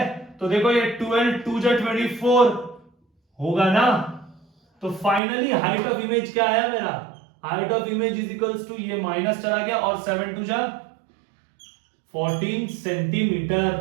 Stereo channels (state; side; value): drops out; left; at 5.2 s